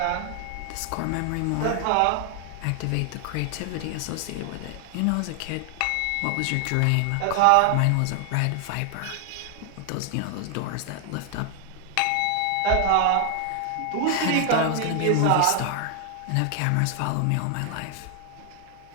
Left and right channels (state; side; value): different; both; correlation 0.00